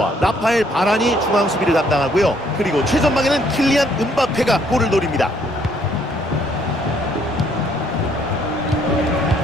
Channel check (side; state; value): both; normal; correlation 0.66